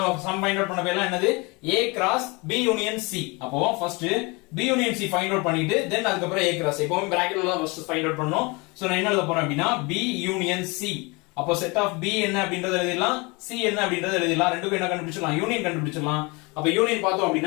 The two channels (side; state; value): right; quieter; 27.2 dB